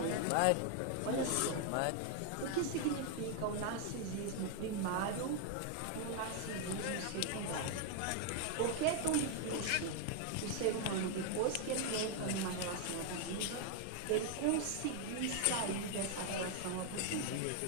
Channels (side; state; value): both; different; correlation 0.00